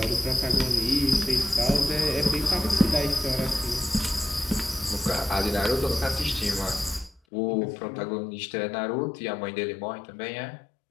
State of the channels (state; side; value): drops out; right; at 7.2 s